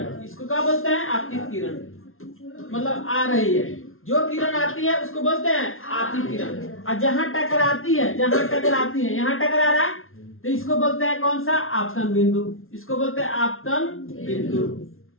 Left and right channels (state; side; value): late; right; 0.61 ms